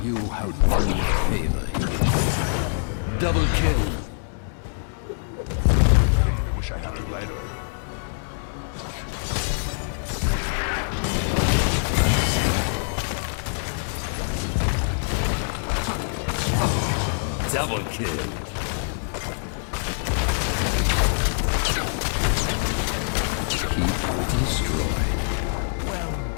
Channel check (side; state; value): right; silent; digital silence